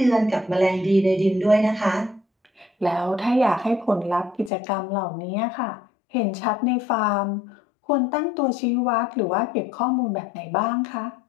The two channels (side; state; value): right; drops out; at 4.5 s